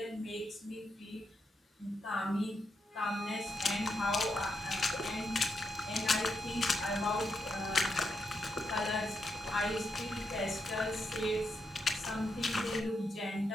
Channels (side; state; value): both; normal; correlation 0.82